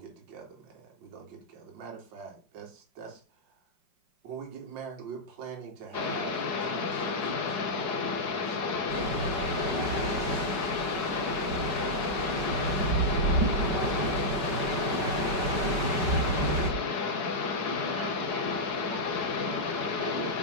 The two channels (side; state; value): left; late; 5.2 ms